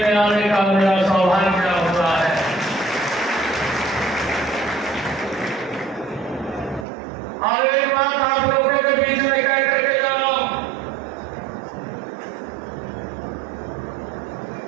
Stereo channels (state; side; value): drops out; left; at 6.9 s